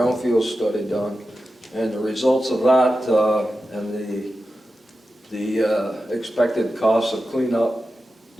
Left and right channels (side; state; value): both; normal; correlation 0.92